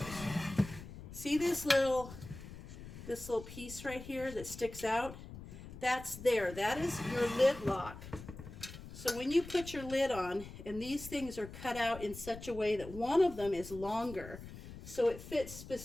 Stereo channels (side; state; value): left; noise; rumble, 13 dB below the sound